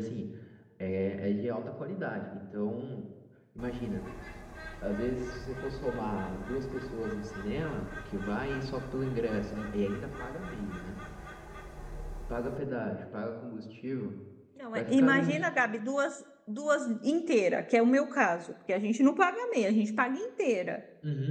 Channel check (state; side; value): identical; both; correlation 1.00